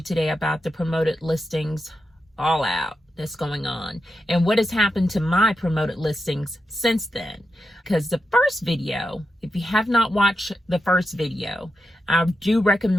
today about the promoted listings all out that's going on and what has happened to my promoted listings since then. Because the first video, if you have not watched the first video, I do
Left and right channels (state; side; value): normal; both; correlation 0.87